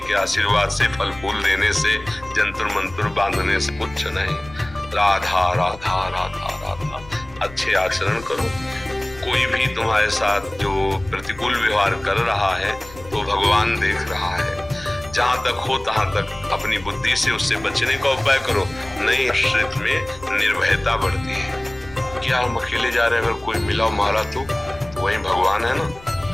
आशीर्वाद से, फल फूल देने से, जंतर मंत्र बांधने से कुछ नहीं। राधा राधा राधा राधा, अच्छे आचरण करो। कोई भी तुम्हारे साथ जो प्रतिकूल व्यवहार कर रहा है तो भगवान देख रहा है। जहां तक हो तहां तक अपनी बुद्धि से उससे बचने का उपाय करो। नहीं, आश्रित में निर्भयता बढ़ती है। क्या हम अकेले जा रहे हैं, अगर कोई मिला मारा तो वही भगवान है ना,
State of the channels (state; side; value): noise; left; rumble, 19 dB below the sound